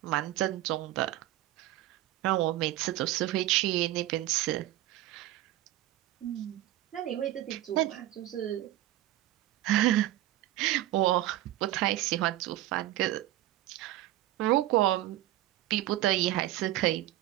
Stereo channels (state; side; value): quieter; left; 14.9 dB